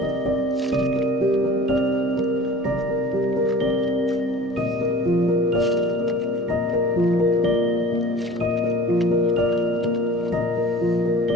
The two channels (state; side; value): normal; both; correlation 0.43